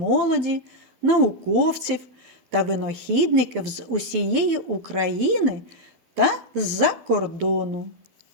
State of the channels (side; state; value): left; late; 12 ms